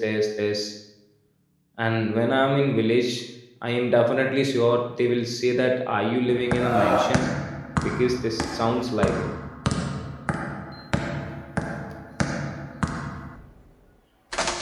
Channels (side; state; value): both; identical; correlation 1.00